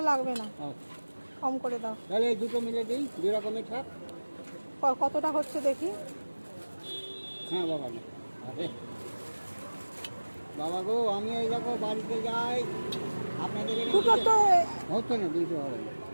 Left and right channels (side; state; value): both; inverted; correlation -1.00